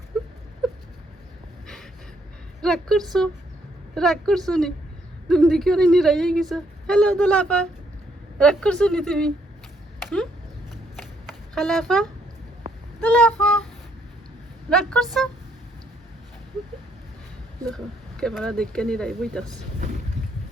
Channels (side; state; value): both; normal; correlation 0.71